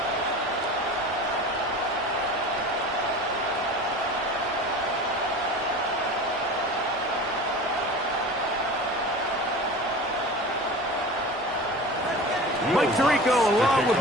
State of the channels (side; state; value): both; normal; correlation 0.35